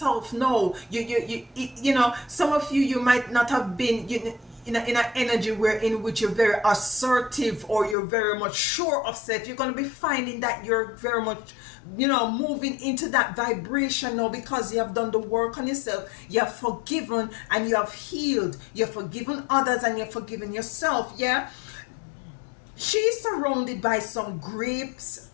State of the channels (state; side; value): drops out; right; at 8.0 s